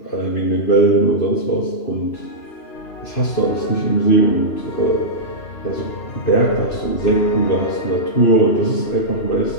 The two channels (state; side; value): late; right; 2.9 ms